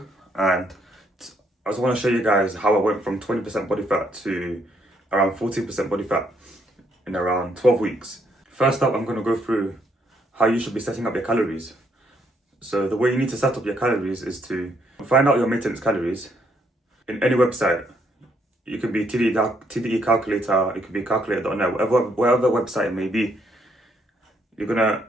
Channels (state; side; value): normal; both; correlation 0.72